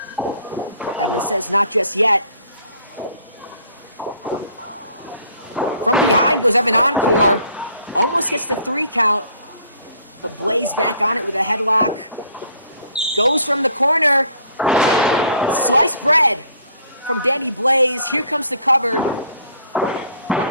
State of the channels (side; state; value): both; inverted; correlation -0.57